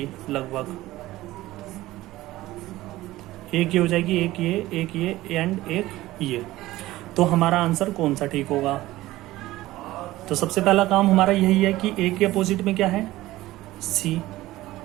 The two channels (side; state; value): left; quieter; 16.9 dB